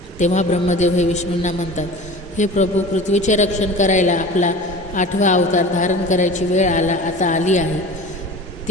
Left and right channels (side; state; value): both; normal; correlation 0.37